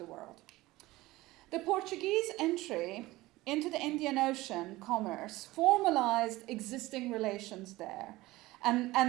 world. The Portuguese entry into the Indian Ocean commerce formalized existing relations there,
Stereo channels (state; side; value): quieter; left; 18.9 dB